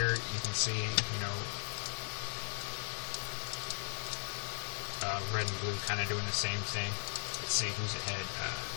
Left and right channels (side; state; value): right; silent; 53 dB below the other